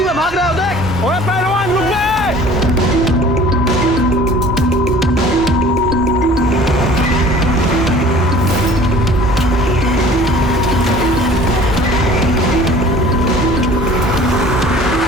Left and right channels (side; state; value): both; normal; correlation 0.47